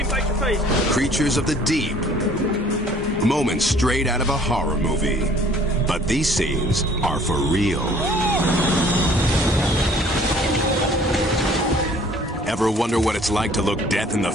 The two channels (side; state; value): both; normal; correlation 0.54